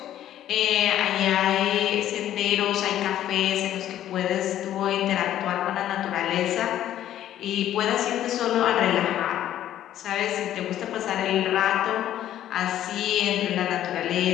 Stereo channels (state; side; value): quieter; right; 12.0 dB